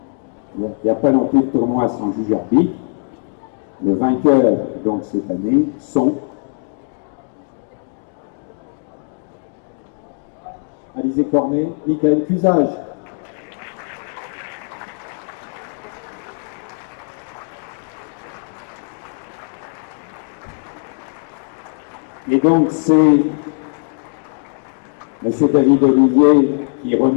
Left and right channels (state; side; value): silent; right; 57 dB below the other